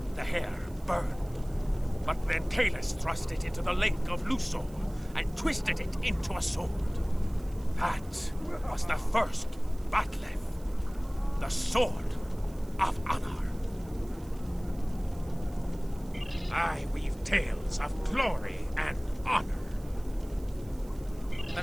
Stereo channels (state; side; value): noise; right; hiss, 24 dB below the sound